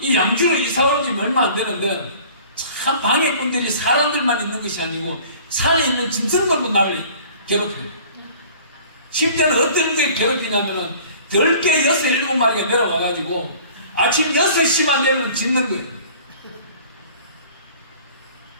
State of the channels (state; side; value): inverted; both; correlation -0.48